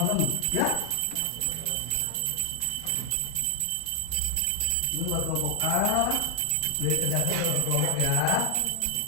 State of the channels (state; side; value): different; both; correlation 0.00